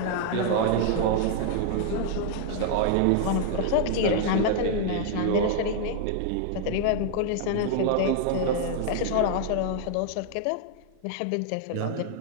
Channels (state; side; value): different; both; correlation 0.00